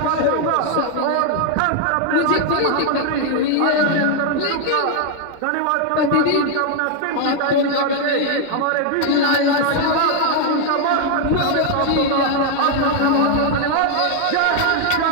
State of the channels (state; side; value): different; both; correlation 0.00